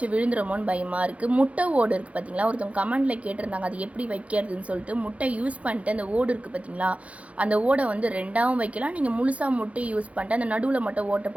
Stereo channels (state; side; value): late; left; 0.064 ms